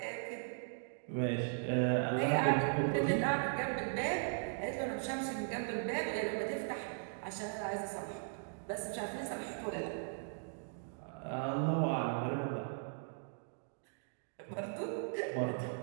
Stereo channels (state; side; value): silent; left; digital silence